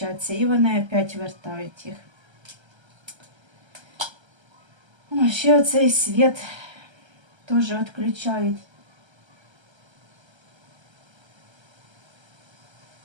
і вони опять вертають їх. О, ще оцей світ теж відключають.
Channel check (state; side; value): late; left; 1.3 ms